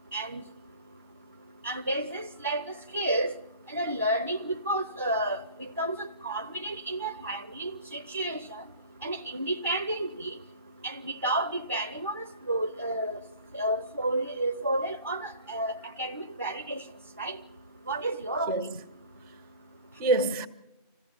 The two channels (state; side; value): inverted; both; correlation -0.43